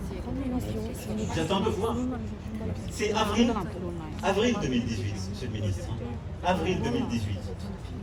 J'attends de voir. C'est avril 2018, monsieur le ministre. Avril 2018.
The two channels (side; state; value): both; identical; correlation 1.00